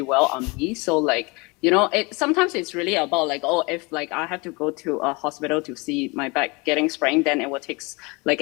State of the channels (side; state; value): right; quieter; 27.0 dB